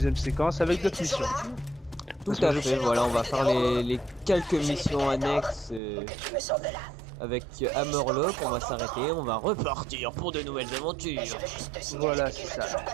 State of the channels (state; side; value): drops out; left; at 5.8 s